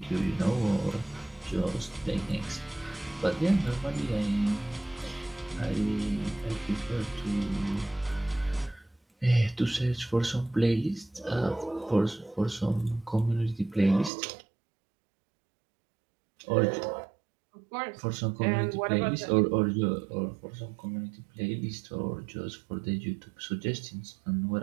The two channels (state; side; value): drops out; left; at 14.1 s